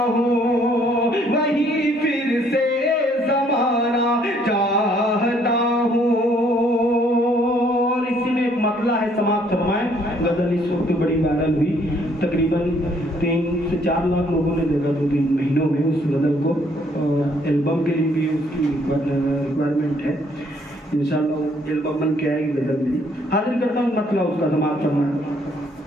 हूँ, वही फिर से ज़माना चाहता हूँ। और इसी में एक मतला है, समाप्त फरमाएं। गजल इस वक्त बड़ी वायरल हुई, तकरीबन 3 से 4 लाख लोगों ने देखा 2-3 महीनों में उस गजल को। एल्बम के लिए भी उसकी रिक्वायरमेंट है, इंशाल्लाह एल्बम बन के आएगी गजल मेरी। हाजिर करता हूँ मतलब उसका, समाप्त फरमाएं।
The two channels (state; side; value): normal; both; correlation 0.65